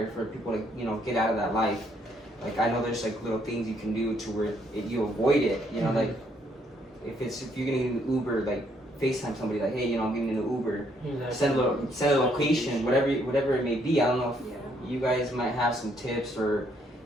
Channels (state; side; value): normal; both; correlation 0.70